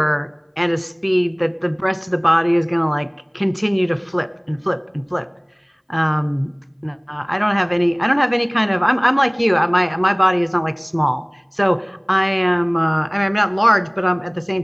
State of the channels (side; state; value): both; identical; correlation 1.00